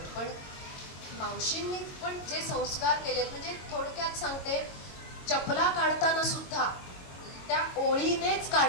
पण मावशींनी पण जे संस्कार केलेत, म्हणजे थोडक्यात सांगते, चपला काढताना सुद्धा त्या ओळीनेच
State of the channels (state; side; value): late; right; 22 ms